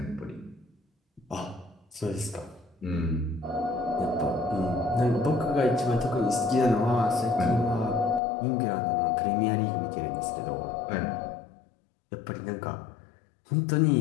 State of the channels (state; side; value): drops out; right; at 8.2 s